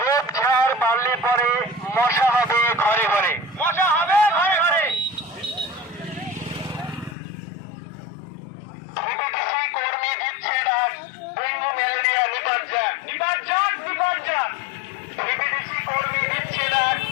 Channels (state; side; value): drops out; right; at 7.2 s